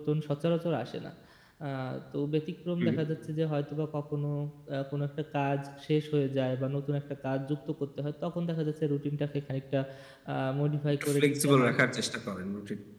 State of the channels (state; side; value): identical; both; correlation 1.00